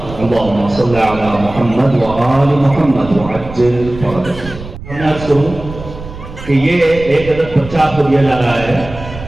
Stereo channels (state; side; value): noise; right; rumble, 13 dB below the sound